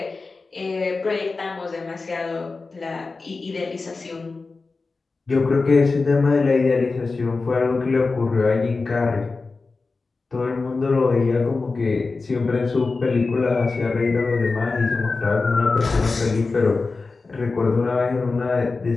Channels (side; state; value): right; quieter; 4.0 dB